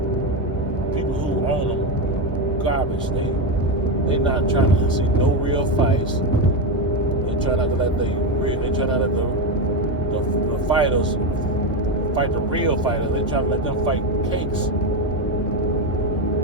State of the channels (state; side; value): normal; both; correlation 0.11